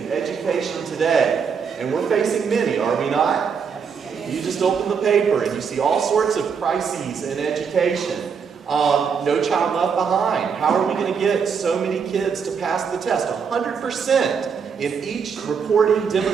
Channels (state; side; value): quieter; left; 6.3 dB